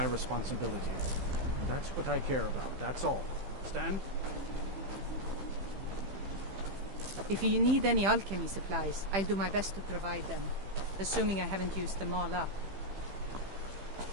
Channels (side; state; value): left; late; 15 ms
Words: responsibility. And that's what I care about. That's all. Understand? If you need any alchemy supplies, I'll do my best to provide them. Assuming I haven't used them all up.